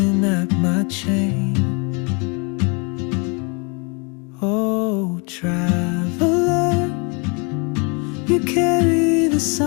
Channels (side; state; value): right; quieter; 33.1 dB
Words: at my chain. Oh, traveler, you carry the